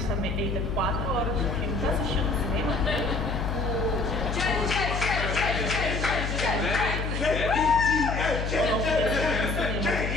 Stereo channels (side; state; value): left; noise; hum, 2 dB below the sound